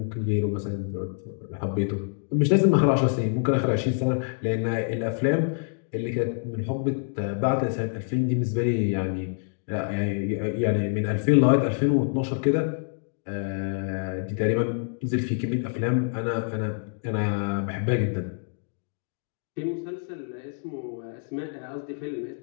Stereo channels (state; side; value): silent; right; 60 dB below the other